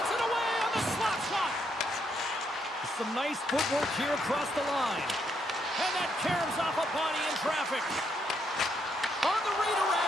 it away on the slap shot. Some nice footwork here across the line. And that caroms off a body in traffic. On the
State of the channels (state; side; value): normal; both; correlation 0.76